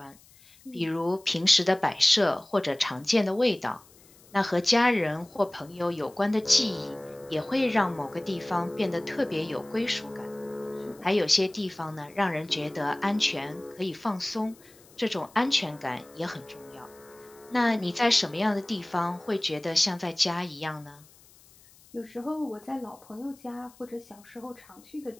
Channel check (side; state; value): left; noise; hiss, 26 dB below the sound